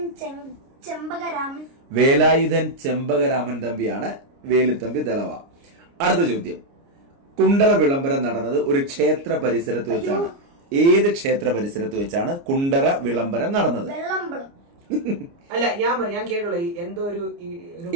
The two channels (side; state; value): left; late; 29 ms